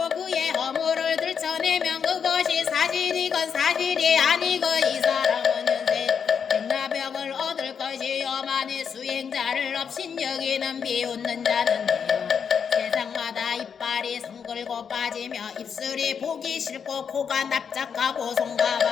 그의 허물을 들춰내면 그것이 사실이건 사실이 아니고 이 사람은 현세 백나병을 얻을 것이요. 만일 수행자를 없인 여기는 비웃는 자는 돼요. 세상마다 이빨이 성글고 빠지며 입술이 보기 싫고 코가 납작하고 손과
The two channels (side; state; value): right; quieter; 6.9 dB